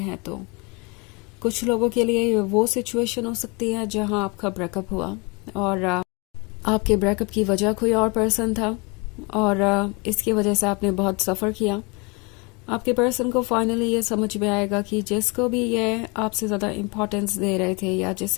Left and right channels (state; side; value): quieter; right; 29.4 dB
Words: तो कुछ लोगों के लिए वो सिचुएशन हो सकती है जहां आपका ब्रेकअप हुआ और आपके ब्रेकअप की वजह कोई और पर्सन था और इसकी वजह से आपने बहुत सफर किया। आपके पर्सन को फाइनली ये समझ में आएगा कि जिसको भी ये आपसे ज़्यादा इम्पोर्टेंस दे रहे थे या